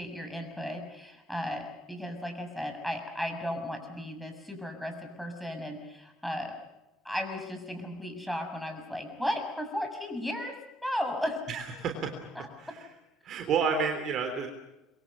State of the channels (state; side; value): normal; both; correlation 0.68